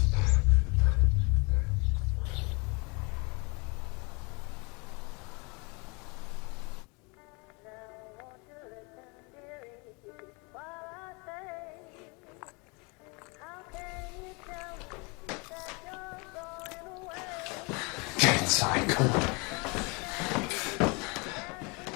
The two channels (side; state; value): right; quieter; 30.0 dB